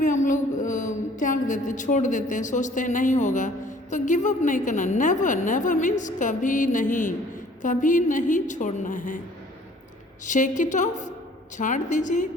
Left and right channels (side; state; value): both; normal; correlation 0.55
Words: हम लोग त्याग देते हैं, छोड़ देते हैं, सोचते हैं नहीं होगा, तो गिव अप नहीं करना। नेवर मीन्स कभी नहीं छोड़ना है। शेक इट ऑफ, छाड़ दीजिए।